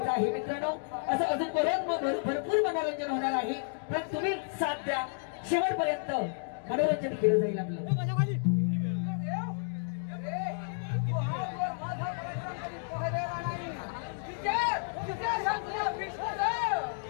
आहे. मित्रांनो, असं अजून भरपूर मनोरंजन होणार आहे, पण तुम्ही साथ द्या. शेवटपर्यंत मनोरंजन केलं जाईल आपलं.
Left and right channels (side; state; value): right; silent; digital silence